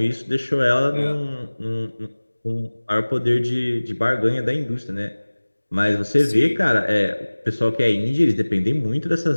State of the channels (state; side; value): inverted; both; correlation -1.00